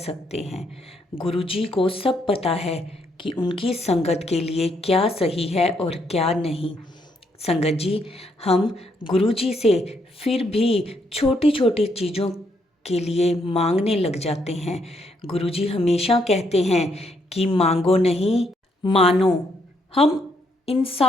हैं। गुरु जी को सब पता है कि उनकी संगत के लिए क्या सही है और क्या नहीं। संगत जी, हम गुरु जी से फिर भी छोटी छोटी चीज़ों के लिए मांगने लग जाते हैं। गुरु जी हमेशा कहते हैं कि मांगो नहीं, मानो। हम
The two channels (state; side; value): normal; both; correlation 0.74